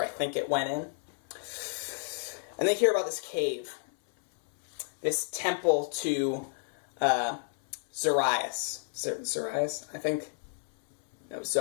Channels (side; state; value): right; silent; 57 dB below the other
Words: I think it went in. And they hear about this cave. This temple to Zarius. Zarius, I think? No,